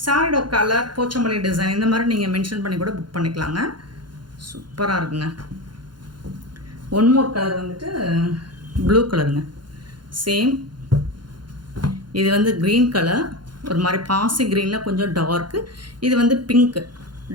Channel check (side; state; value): left; late; 0.71 ms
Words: சாரியோட கலர், போச்சம்பள்ளி டிசைன் இந்த மாதிரி நீங்கள் மென்ஷன் பண்ணி கூட புக் பண்ணிக்கலாங்க. சூப்பராக இருக்குங்க. ஒன் மோர் கலர் வந்துட்டு ப்ளூ கலருங்க. சேம் இது வந்து க்ரீன் கலர், ஒரு மாதிரி பாசி க்ரீனில் கொஞ்சம் டார்க்கு. இது வந்து பிங்க்கு,